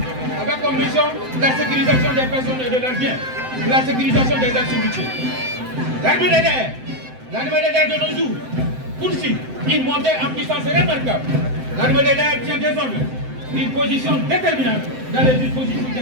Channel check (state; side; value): late; left; 7.8 ms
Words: avec comme mission la sécurisation des personnes et de leurs biens, la sécurisation des activités. L'armée de l'air de nos jours poursuit une montée en puissance remarquable. L'armée de l'air tient désormais une position déterminante dans les dispositifs de